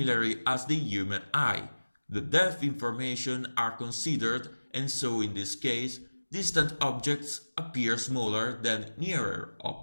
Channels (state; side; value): inverted; both; correlation -1.00